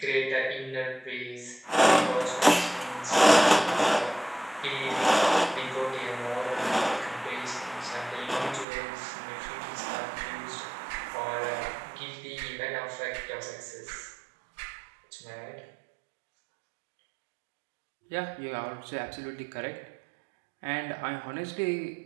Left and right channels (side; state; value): left; drops out; at 8.7 s